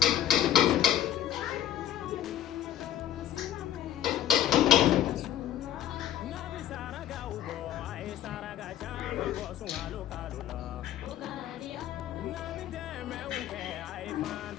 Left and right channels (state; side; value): quieter; right; 11.5 dB